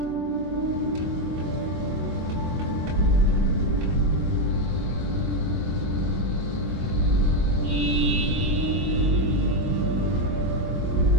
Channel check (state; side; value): late; left; 23 ms